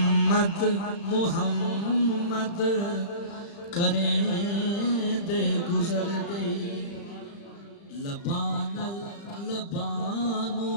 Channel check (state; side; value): late; right; 35 ms